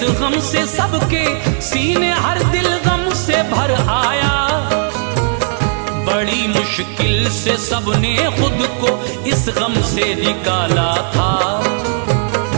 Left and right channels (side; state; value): left; silent; digital silence